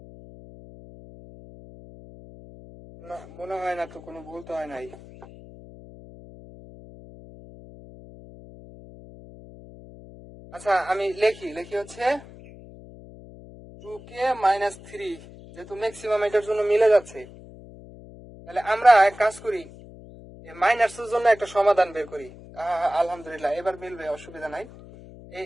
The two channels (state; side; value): noise; left; hum, 18 dB below the sound